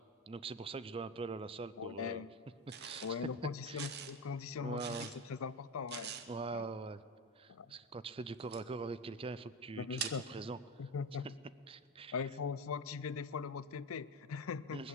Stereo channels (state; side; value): normal; both; correlation 0.20